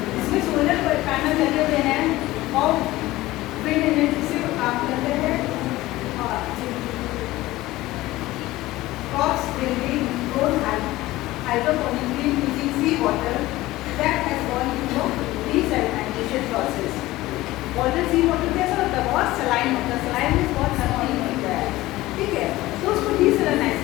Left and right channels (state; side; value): quieter; right; 17.7 dB